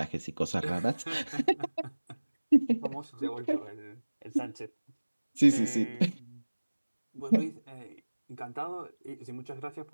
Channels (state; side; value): inverted; both; correlation -1.00